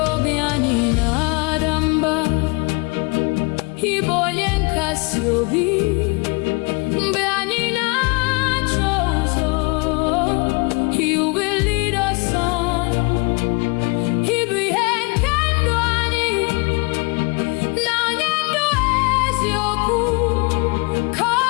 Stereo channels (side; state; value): right; quieter; 30.2 dB